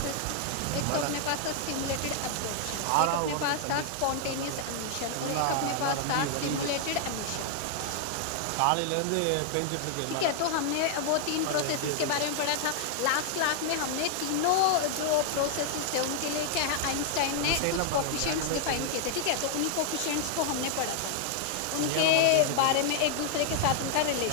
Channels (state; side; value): different; both; correlation 0.00